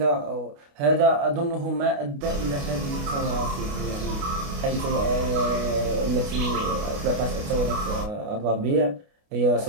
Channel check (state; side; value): late; left; 29 ms